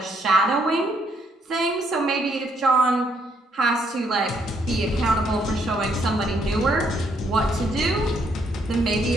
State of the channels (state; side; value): normal; both; correlation 0.71